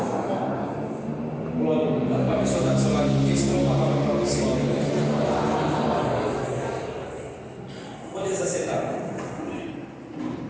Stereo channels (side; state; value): both; identical; correlation 1.00